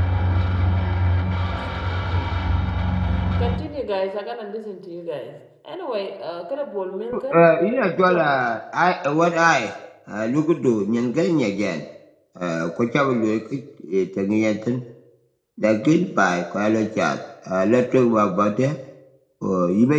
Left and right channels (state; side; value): identical; both; correlation 1.00